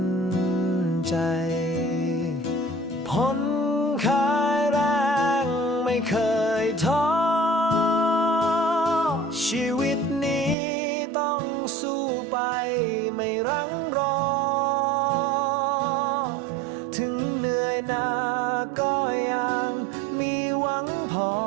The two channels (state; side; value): drops out; left; at 10.6 s